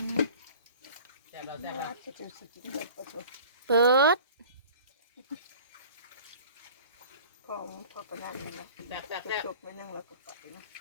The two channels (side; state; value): both; inverted; correlation -0.43